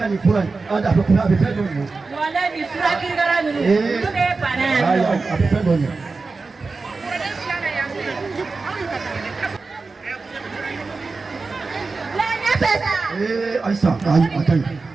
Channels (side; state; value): left; quieter; 4.0 dB